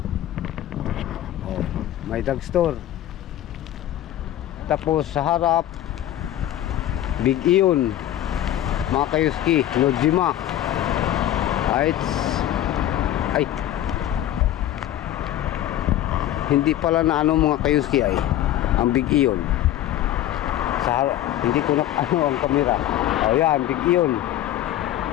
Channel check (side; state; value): right; quieter; 12.6 dB